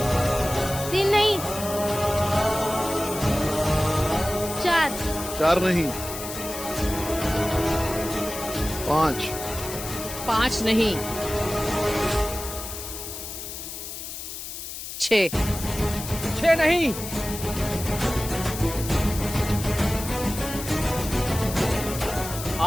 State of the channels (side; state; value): left; noise; hiss, 9 dB below the sound